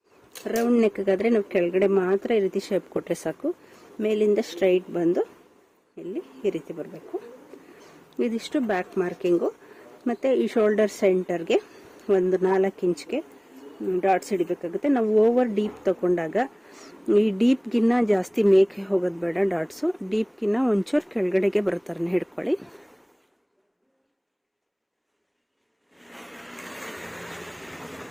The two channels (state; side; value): identical; both; correlation 1.00